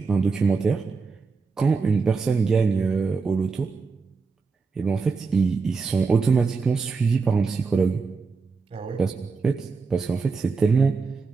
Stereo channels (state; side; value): quieter; left; 4.7 dB